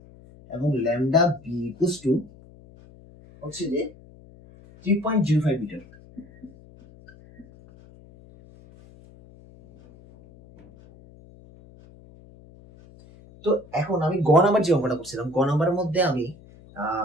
এবং ল্যামডা বি ইকুয়ালস টু হচ্ছে যে 3.05 মিটার। তো এখন আমি নাম্বার যে অঙ্কটা করছিলাম, নাম্বারের মধ্যে আমি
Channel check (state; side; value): noise; left; hum, 23 dB below the sound